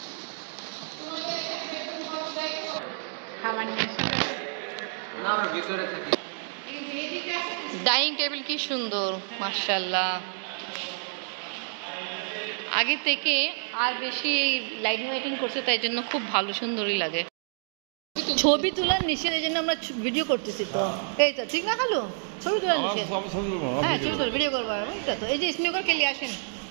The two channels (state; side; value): silent; left; 59 dB below the other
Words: ডাইনিং টেবিল কি সুন্দর, মাশাআল্লাহ। আগে থেকে আর বেশি লাইটিং ওয়াইটিং করছে, তাই জন্য খুব ভালো, সুন্দরই লাগে। ছবি তোলার নিষেধ, এই জন্য আমরা ভিডিও করতেছি তো। এই তো ঠিক না খালু? ছবি তোলার নিষেধ। হ্যাঁ ছবি তোলা, ভিডিও করবো এটা তো। এই যে স্নিকার কে নিয়ে আসেন।